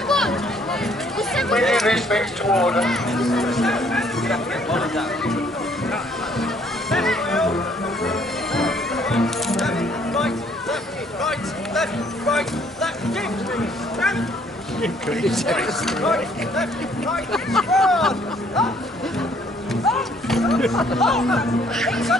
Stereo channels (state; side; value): normal; both; correlation 0.63